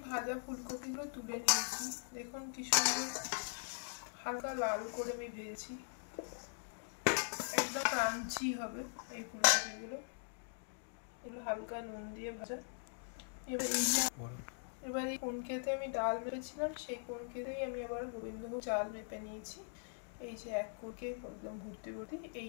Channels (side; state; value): right; silent; digital silence